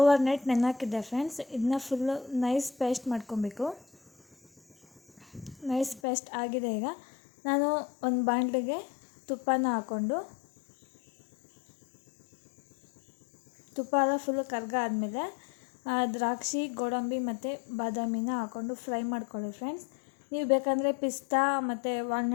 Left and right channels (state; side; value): drops out; right; at 6.0 s